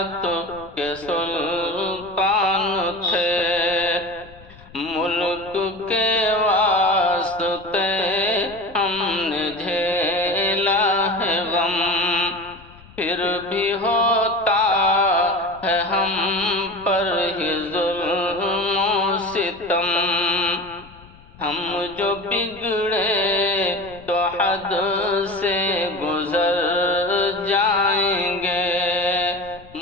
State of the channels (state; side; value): noise; left; rumble, 23 dB below the sound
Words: کے سلطان تھے، ملک کے واسطے ہم نے جھیلا ہے غم، پھر بھی ہوتا ہے ہم پر ہی ظلم و ستم، ہم جو بگڑے تو حد سے گزر جائیں گے،